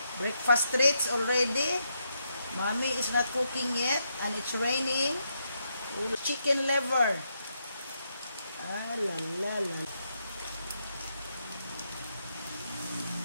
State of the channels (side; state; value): both; inverted; correlation -0.80